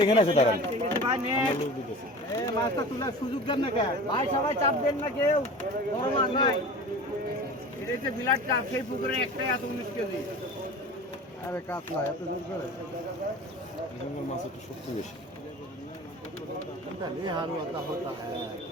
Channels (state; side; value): normal; both; correlation 0.37